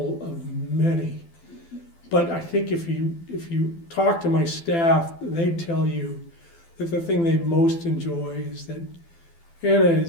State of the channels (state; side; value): late; right; 12 ms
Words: of many. But I think if you talk to my staff, they'd tell you that the thing they most enjoy is that Anna